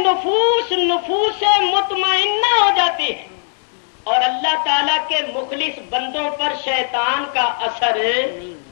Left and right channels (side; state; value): right; silent; digital silence